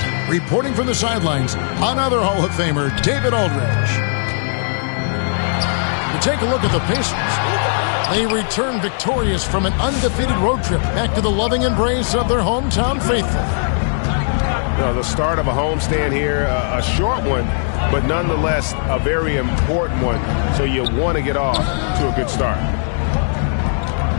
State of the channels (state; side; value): silent; right; 67 dB below the other